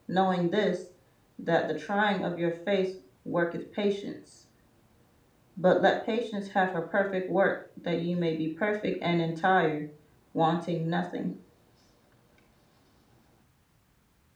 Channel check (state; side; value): identical; both; correlation 1.00